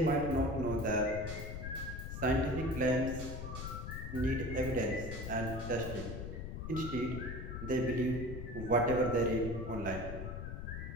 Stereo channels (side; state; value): left; noise; rumble, 6 dB below the sound